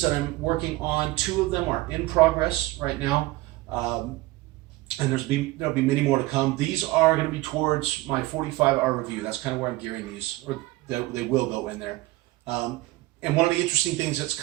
that I'm working on. 2 of them are in progress right now. And there'll be many more to come. These are going to be towards my 45-hour review. That's kind of where I'm gearing these, or they will go in there. And one of the interesting things that's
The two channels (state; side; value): quieter; left; 19.3 dB